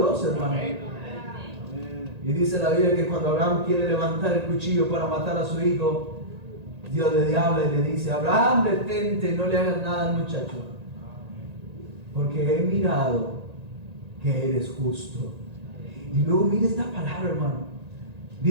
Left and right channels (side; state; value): left; late; 1.9 ms